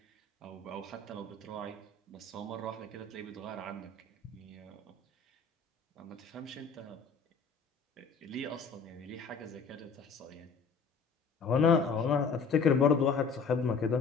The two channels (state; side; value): quieter; right; 5.0 dB